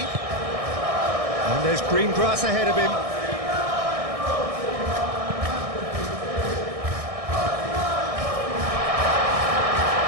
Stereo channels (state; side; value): late; left; 1.6 ms